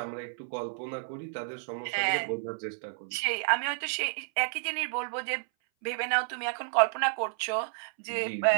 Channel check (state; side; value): silent; left; 57 dB below the other